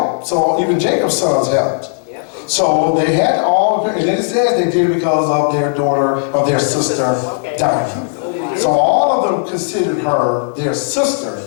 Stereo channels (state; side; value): silent; right; digital silence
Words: So even Jacob's sons helped. So they had all, and it says they did it because of their daughter, of their sister, Dinah. So all of them considered her their sister,